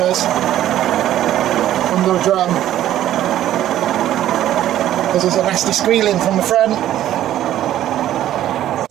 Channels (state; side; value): quieter; left; 12.6 dB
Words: from the drum because there's a nasty squealing from the front.